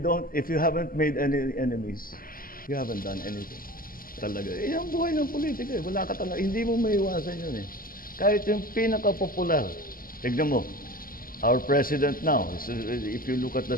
haven't made any enemies, you haven't done anything. Talaga. Ang buhay ng politika eh. Wala ka talaga. Hindi mo maiwasan yun eh. Kahit yung pinaka-popular. Tignan mo. Our president now, if you look at the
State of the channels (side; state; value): right; late; 0.42 ms